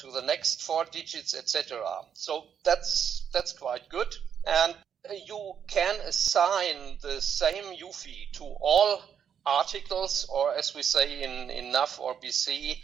the next 4 digits, etc. So that's quite good. And you can assign the same UFI to all articles, or as we say in Nav or BC,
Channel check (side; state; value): left; quieter; 8.1 dB